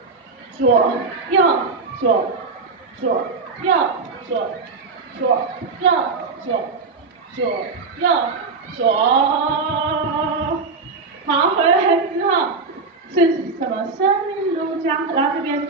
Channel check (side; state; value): left; quieter; 4.3 dB